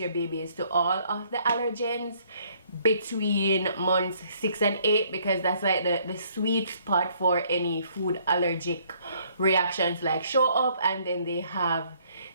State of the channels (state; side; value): inverted; both; correlation -0.64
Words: babies to all of the allergens between months 6 and 8, because that's like the sweet spot for any food allergic reactions like show up, and then they have